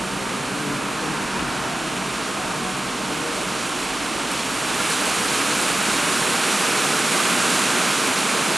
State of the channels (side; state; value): both; normal; correlation 0.95